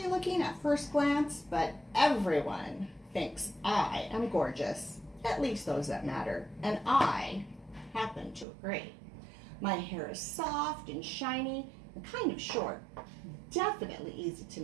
looking at first glance, but everyone thinks I am gorgeous. At least those that matter, and I happen to agree. My hair is soft and shiny and kind of short, definitely easy to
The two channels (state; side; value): drops out; left; at 8.5 s